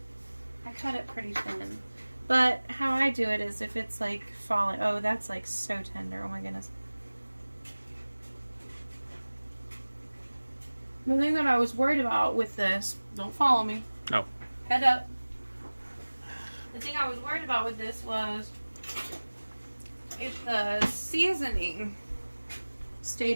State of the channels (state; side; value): inverted; both; correlation -1.00